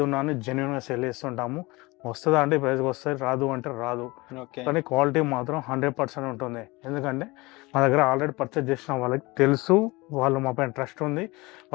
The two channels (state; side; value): quieter; right; 23.2 dB